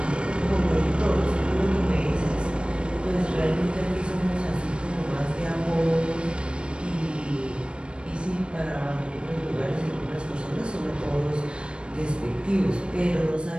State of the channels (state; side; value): late; left; 0.056 ms